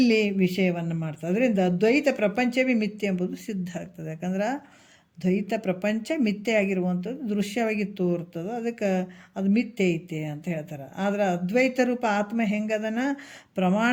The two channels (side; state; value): both; identical; correlation 1.00